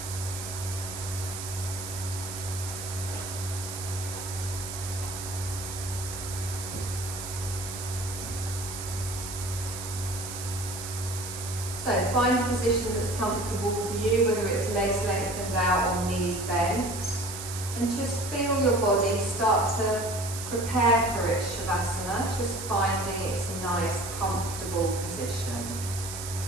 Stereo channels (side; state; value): right; noise; hiss, 8 dB below the sound